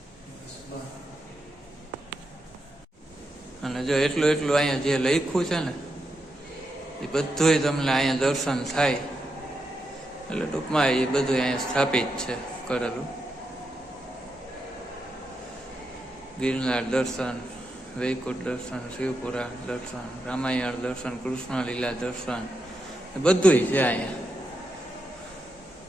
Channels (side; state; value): both; normal; correlation 0.85